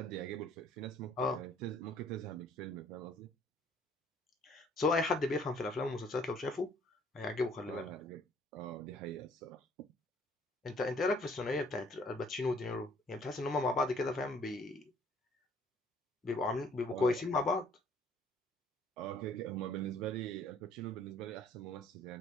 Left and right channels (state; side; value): normal; both; correlation 0.60